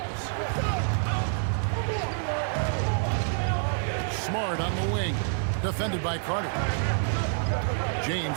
Smart on the wing. Defended by Carter.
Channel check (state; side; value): silent; left; digital silence